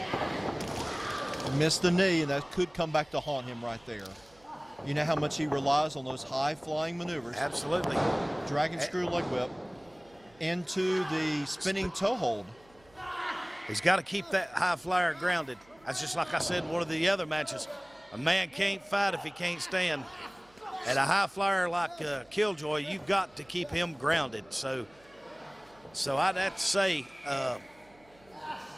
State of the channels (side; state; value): right; noise; hum, 29 dB below the sound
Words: Missed the knee, and that could come back to haunt him right there. You know how much he relies on those high-flying maneuvers. Absolutely. Dragon screw leg whip into the spinning toe hold. He's got to keep that high flyer grounded. That's just like I said in one of the other matches. A man can't fight if he can't stand. At a high flyer like Killjoy, you've got to keep him grounded. So I'd have to say